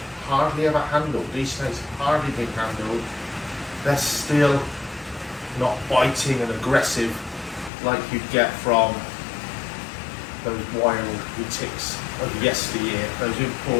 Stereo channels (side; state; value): right; drops out; at 7.7 s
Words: hardly ever handled. These snakes have hardly been handled. They're still not biting and aggressive like you'd get from those wild retics of yesteryear, those